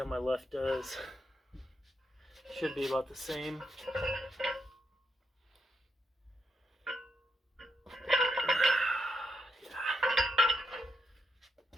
my left does. Should be about the same.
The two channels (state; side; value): normal; both; correlation 0.82